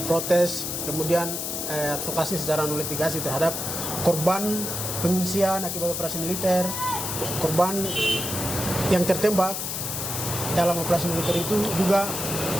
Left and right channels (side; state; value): left; noise; hiss, 3 dB below the sound